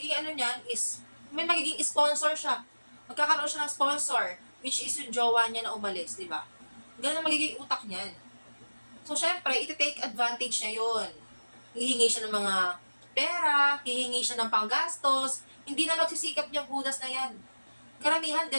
ano niyan is, may magiging sponsor siya. Magkakaroon siya ng sponsor, which is yung jowa niya na umalis, di ba? Ganun ang magiging utak niyan. So, syempre, iti-take advantage niya yun. Hihingi siya ng mga pera, hihingi siya ng panggastos, hindi na magsisikap niyang hudas na yan. Karamihan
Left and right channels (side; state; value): both; inverted; correlation -1.00